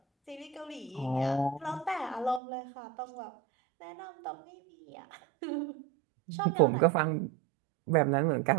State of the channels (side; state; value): left; drops out; at 2.4 s